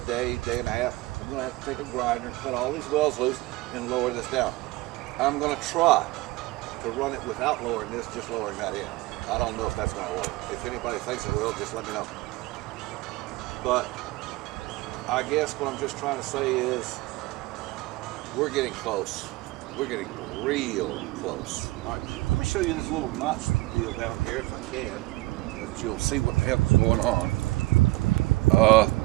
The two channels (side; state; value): left; quieter; 20.4 dB